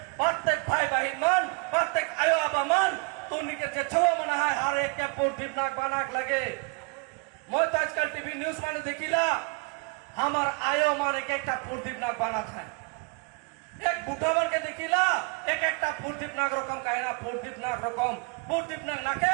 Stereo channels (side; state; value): left; quieter; 30.9 dB